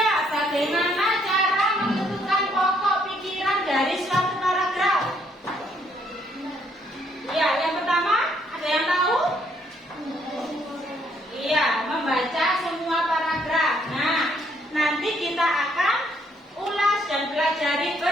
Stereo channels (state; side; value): normal; both; correlation 0.69